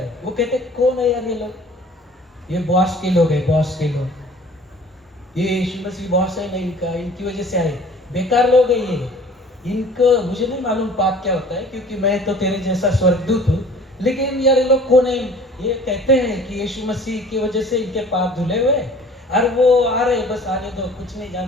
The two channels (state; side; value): normal; both; correlation 0.49